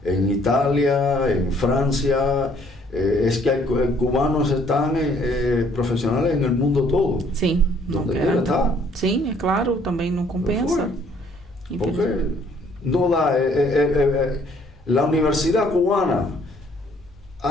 Italia, en Francia. Es que hay cubanos están profesionales en el mundo todo. Sim, donde quiera está. Sim, é claro, também não compensa. Porque no da. La universidad cubana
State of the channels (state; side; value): normal; both; correlation 0.62